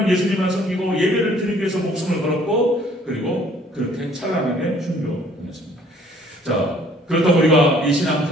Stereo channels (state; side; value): normal; both; correlation 0.58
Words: 예수님만 섬기고 예배를 드리기 위해서 목숨을 걸었고 그리고 그렇게 찬란하게 순교했습니다. 자, 그렇다고 우리가 이